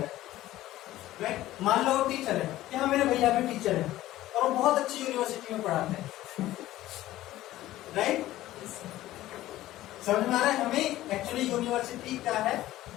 है? राइट, मान लो वो टीचर है, यहाँ मेरे भैया भी टीचर है और वो बहुत अच्छी यूनिवर्सिटी में पढ़ाते हैं। राइट, समझ में आ रहा है? हमें एक्चुअली यूनिवर्सिटी क्या है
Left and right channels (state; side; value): quieter; right; 15.2 dB